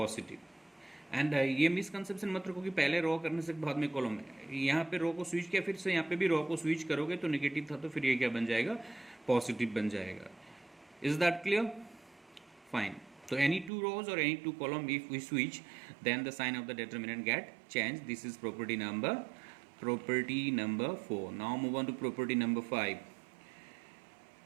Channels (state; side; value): drops out; left; at 13.7 s